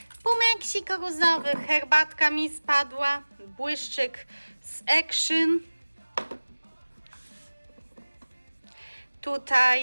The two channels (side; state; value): both; inverted; correlation -1.00